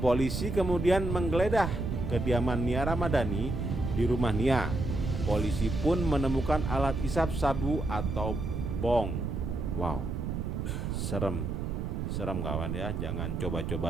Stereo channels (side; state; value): right; noise; rumble, 3 dB below the sound